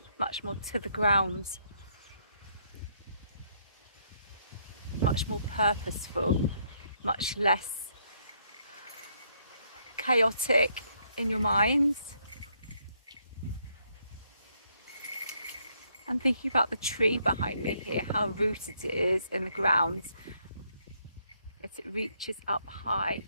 much more to the ground, much more purposeful, much less chaotic in your mind. I'm thinking about the tree behind me here, how rooted it is in the ground, that it reaches up high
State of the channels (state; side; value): inverted; both; correlation -0.72